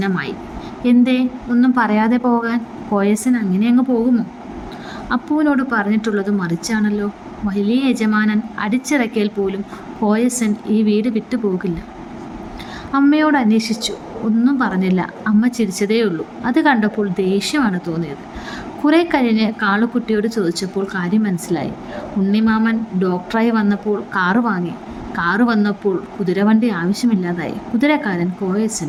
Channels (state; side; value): identical; both; correlation 1.00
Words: എന്തേ ഒന്നും പറയാതെ പോകാൻ? കോയസൻ അങ്ങനെ അങ്ങ് പോകുമോ? അപ്പുവിനോട് പറഞ്ഞിട്ടുള്ളത് മറിച്ചാണല്ലോ. വലിയ യജമാനൻ അടിച്ചിറക്കിയാൽ പോലും കോയസൻ ഈ വീട് വിട്ടു പോകില്ല. അമ്മയോട് അന്വേഷിച്ചു, ഒന്നും പറഞ്ഞില്ല. അമ്മ ചിരിച്ചതേയുള്ളൂ. അത് കണ്ടപ്പോൾ ദേഷ്യമാണ് തോന്നിയത്. കുറെ കഴിഞ്ഞ് കാളുക്കുട്ടിയോട് ചോദിച്ചപ്പോൾ കാര്യം മനസ്സിലായി. ഉണ്ണിമാമൻ ഡോക്ടറായി വന്നപ്പോൾ കാറ് വാങ്ങി. കാറ് വന്നപ്പോൾ കുതിരവണ്ടി ആവശ്യമില്ലാതായി. കുതിരക്കാരൻ